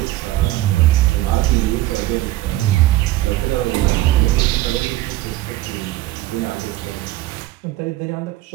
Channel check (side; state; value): left; quieter; 16.2 dB